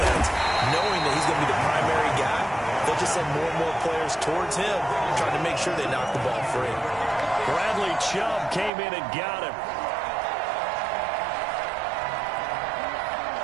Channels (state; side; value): drops out; left; at 8.7 s